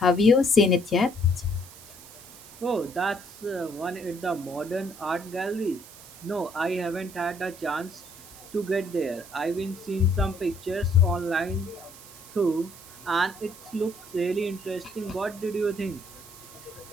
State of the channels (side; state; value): right; noise; hiss, 19 dB below the sound